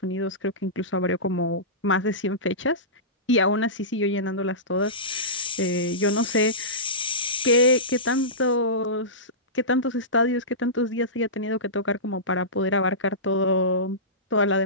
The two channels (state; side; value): normal; both; correlation -0.19